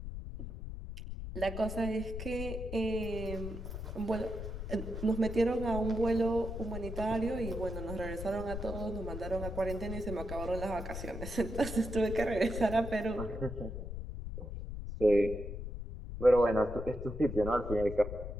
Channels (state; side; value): noise; left; rumble, 7 dB below the sound